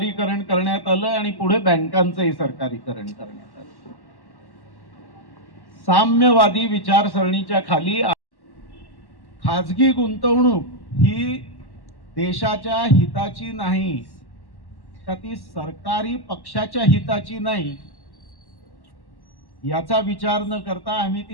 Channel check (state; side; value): late; right; 1.1 ms